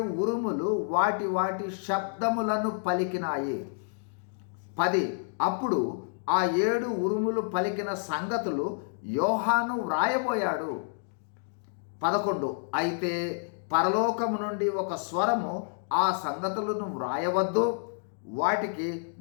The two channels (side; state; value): right; silent; digital silence